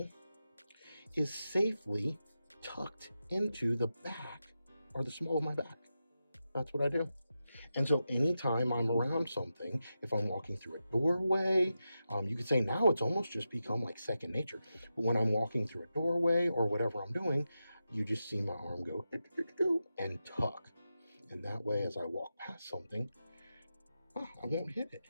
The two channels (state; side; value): inverted; both; correlation -0.90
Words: is safely tucked into the back or the small of my back. That's what I do. And so anytime I'm around something, if I'm walking through a doorway, you could say now it's almost just become like second nature. But when I'm walking through a doorway or whatever I'm doing, you just see my arm go and tuck. And that way, as I walk past something, I won't hit it.